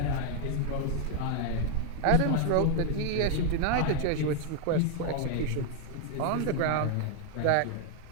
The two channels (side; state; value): both; different; correlation 0.00